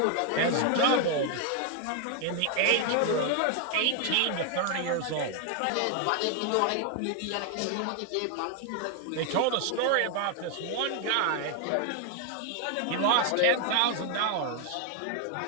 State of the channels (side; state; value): both; different; correlation 0.00